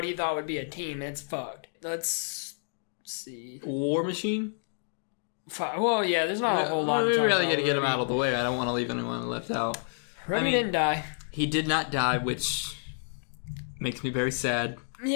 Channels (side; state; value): right; silent; digital silence